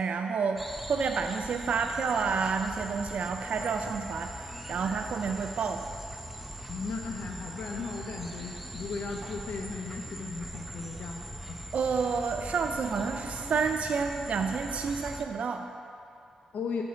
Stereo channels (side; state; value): left; quieter; 3.6 dB